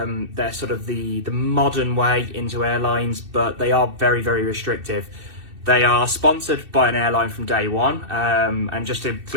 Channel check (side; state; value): left; late; 2.6 ms